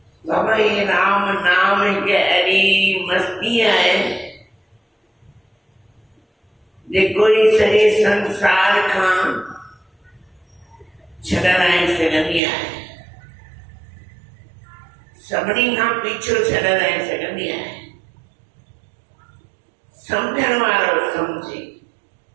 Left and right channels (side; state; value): left; drops out; at 12.4 s